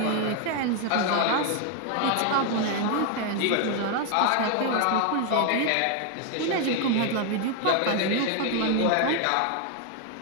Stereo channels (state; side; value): different; both; correlation 0.01